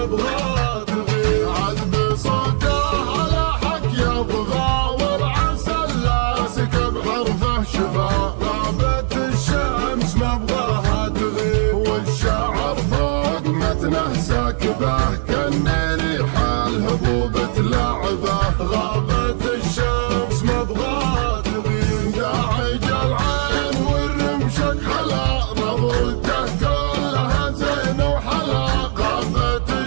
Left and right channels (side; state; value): left; silent; digital silence